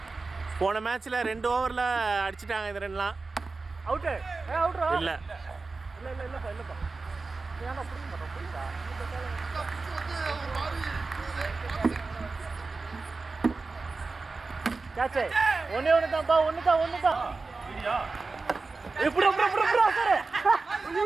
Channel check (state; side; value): quieter; left; 3.9 dB